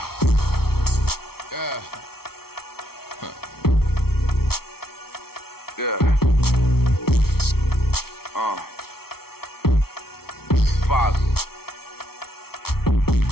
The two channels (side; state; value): right; late; 0.95 ms